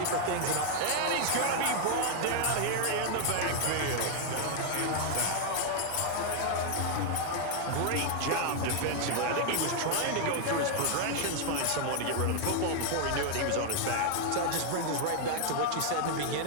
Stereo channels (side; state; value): both; different; correlation 0.00